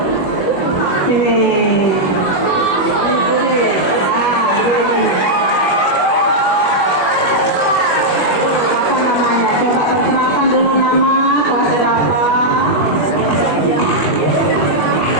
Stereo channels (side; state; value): right; late; 21 ms